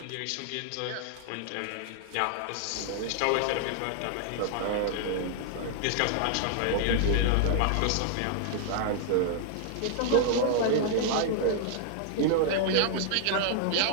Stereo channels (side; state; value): both; different; correlation -0.01